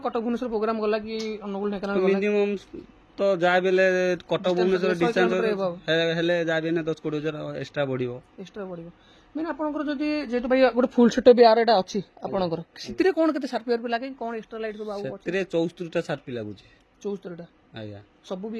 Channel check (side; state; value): both; identical; correlation 1.00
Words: କଟକ ଭୁବନେଶ୍ୱର ପ୍ରୋଗ୍ରାମ ଗଲା କି ଅନୁଗୁଳ ଢେଙ୍କାନାଳ ମିନିମମ୍ ତ ଯାହା ବି ହେଲେ କଟକ ଭୁବନେଶ୍ୱର ଡିଷ୍ଟାନ୍ସ ହେଲେ ଯାହା ବି 10-20 ହଜାର ଏକ୍ସଟ୍ରା ବଢିବ। ମାନେ ଆପଣଙ୍କର ଯଦି ଯେହେତୁ ଭାଇ ଗୋଟେ ଫୁଲ ସେଟଅପ୍ ୟାର ଏଟା ଅଛି ଆପଣଙ୍କର, ସେଥିରେ କଣ କେତେ ସାର୍ପି ଲାଗେ, କଣ ଏକ୍ସଟ୍ରା ଲାଇଟ୍ ସବୁ? ସେଥିରେ 74ଟା ସାର୍ପି ଲାଗୁଛି। 74ଟା ଆଜ୍ଞା, ସବୁ